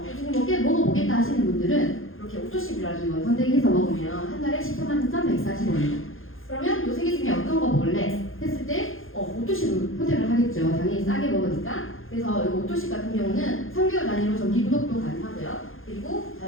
먹어보겠다 하시는 분들은 이렇게 오토십이라는 걸 선택해서 먹으면 한 달에 193,140원입니다. 그러면 요 세 개 중에 어떤 거 먹을래? 했을 때 오토십을 선택을 하겠죠. 당연히 싸게 먹으니까. 그래서 이 오토십 같은 경우는 3개월 단위로 정기 구독도 가능하고요. 그리고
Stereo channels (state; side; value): late; right; 0.60 ms